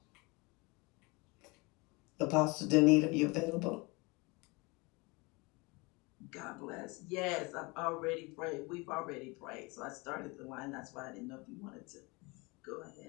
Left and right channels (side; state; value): right; quieter; 26.5 dB